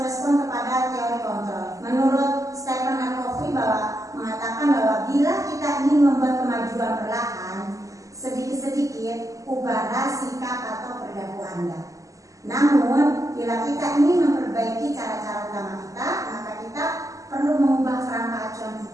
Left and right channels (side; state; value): left; late; 0.16 ms